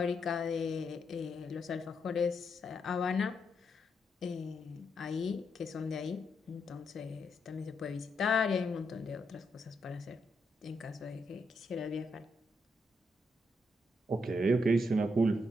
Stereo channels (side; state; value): both; normal; correlation 0.80